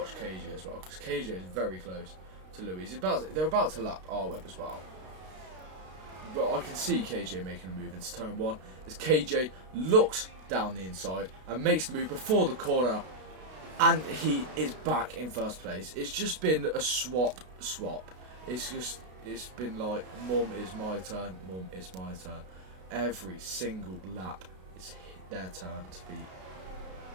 KJ as well, because KJ is very close to Louis. They're about to lap R-Web as well. But I can see KJ making a move into turn 1 as KJ looks down the inside and makes the move before the corner, and he is back in first place. It's just been a swap. It's been like, mum, it's my turn, mum, it's my turn. Every single lap it's their turn to be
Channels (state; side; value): late; left; 32 ms